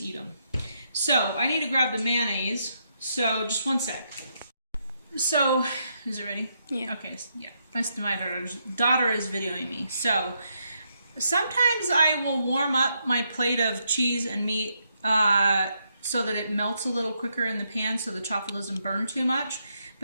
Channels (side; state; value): both; inverted; correlation -0.79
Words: eat them. So I need to grab the mayonnaise. So just one sec. So, is it ready? Yeah. Okay, yeah. My daughter is videoing me. So, sometimes I will warm up my plate of cheese and meat so that it melts a little quicker in the pan so the chaffle doesn't burn too much.